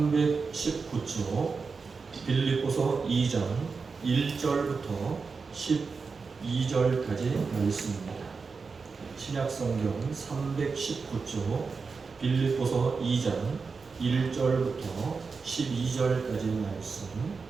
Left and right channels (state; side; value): quieter; left; 4.8 dB